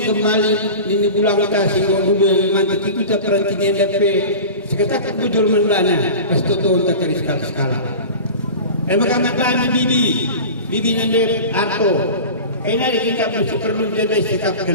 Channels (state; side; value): inverted; both; correlation -0.33